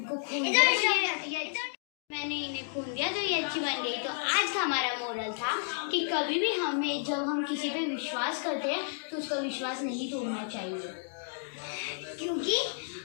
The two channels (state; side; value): silent; right; digital silence